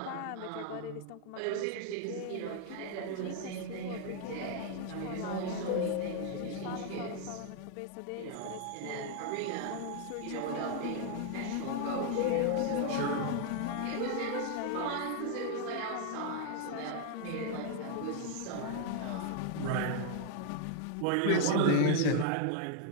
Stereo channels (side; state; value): both; different; correlation 0.00